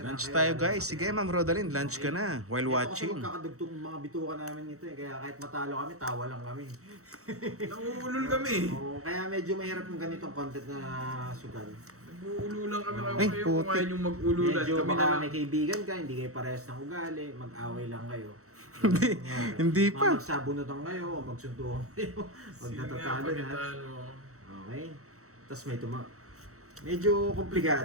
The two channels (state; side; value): late; left; 0.64 ms